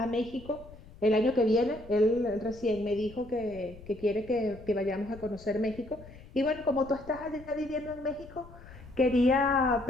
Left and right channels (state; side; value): noise; left; rumble, 19 dB below the sound